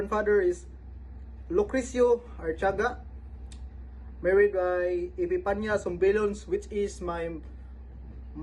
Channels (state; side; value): identical; both; correlation 1.00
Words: is Lucrecio Archaga, married by Epipania Sombilons, which is my